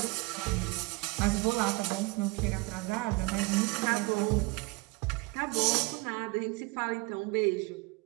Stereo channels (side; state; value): left; quieter; 24.7 dB